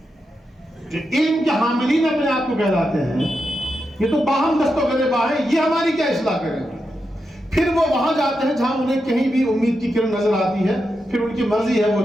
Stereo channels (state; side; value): normal; both; correlation 0.87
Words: جو علم کے حاملین اپنے آپ کو کہلاتے ہیں، یہ تو باہم دست و گریباں ہیں، یہ ہماری کیا اصلاح کریں گے؟ پھر وہ وہاں جاتے ہیں جہاں انہیں کہیں بھی امید کی کرن نظر آتی ہے، پھر ان کی مرضی ہے،